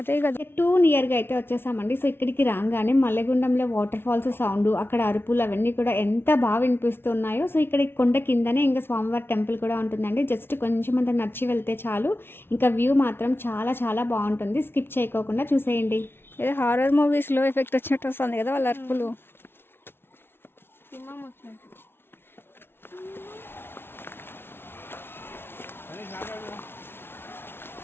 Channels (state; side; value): late; right; 0.11 ms